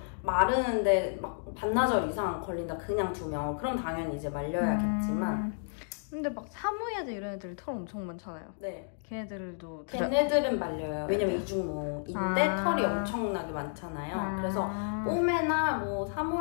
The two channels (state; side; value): silent; right; digital silence